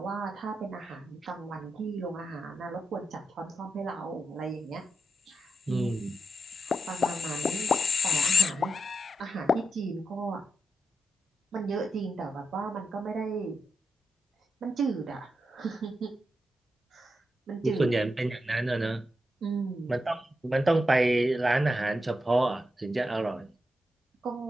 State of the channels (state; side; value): normal; both; correlation 0.87